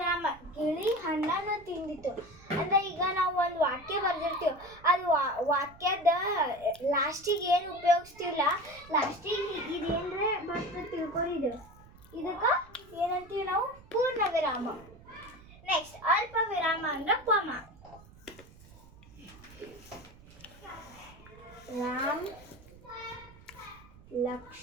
ಗಿಳಿ ಹಣ್ಣನ್ನು ತಿಂದಿತ್ತು ಅಂದ್ರೆ ಈಗ ನಾವು ಒಂದು ವಾಕ್ಯ ಬರ್ದಿರ್ತೀವಿ, ಅದು ವಾಕ್ಯದ ಲಾಸ್ಟಿಗೆ ಏನು ಉಪಯೋಗಿಸ್ತೀವಲ್ಲ, ಲಾಸ್ಟಿಗೆ ಇದೇನ್ರೆ ಬರ್ತದೆ ತಿಳ್ಕೊಂಡಿದ್ದು, ಇದಕ್ಕೆ ಏನಂತೀವಿ ನಾವು? ಪೂರ್ಣ ವಿರಾಮ. ನೆಕ್ಸ್ಟ್ ಅಲ್ಪ ವಿರಾಮ ಅಂದ್ರೆ ಕಾಮ. ರಾಮ್,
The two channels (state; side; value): noise; right; rumble, 22 dB below the sound